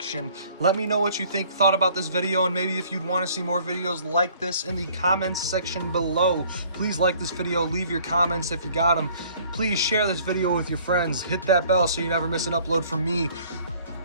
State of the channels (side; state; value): both; inverted; correlation -0.56